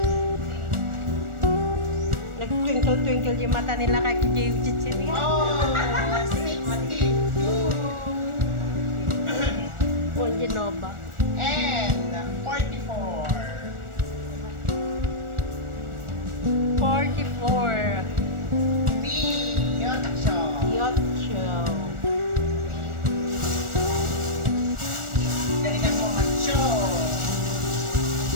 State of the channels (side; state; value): left; late; 1.4 ms